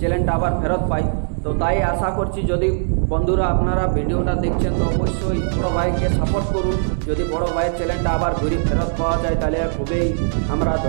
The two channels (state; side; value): silent; left; digital silence